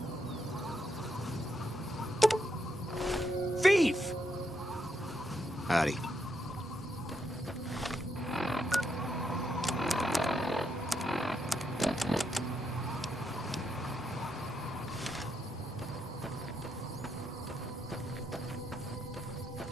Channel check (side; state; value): both; normal; correlation 0.80